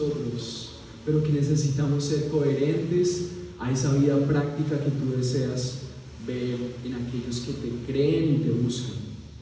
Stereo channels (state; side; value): identical; both; correlation 1.00